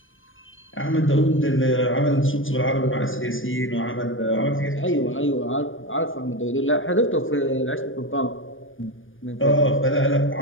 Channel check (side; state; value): right; late; 0.58 ms